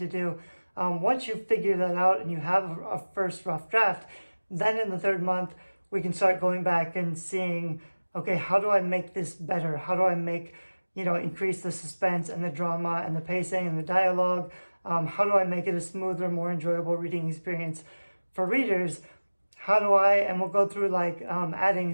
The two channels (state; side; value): inverted; both; correlation -1.00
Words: do. Once you figure that out and you have a first rough draft, then in the third month, we can start going back and seeing, okay, how do I make this better? How do I increase the suspense and the drama and the pacing and the dialogue? How do I make it a smoother, more enjoyable reading experience for readers? And we'll go through adding